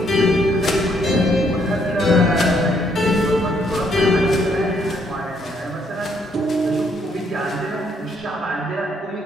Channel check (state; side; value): normal; both; correlation 0.71